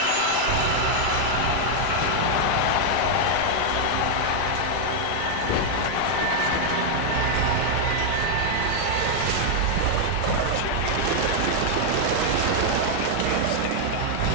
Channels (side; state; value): both; different; correlation 0.00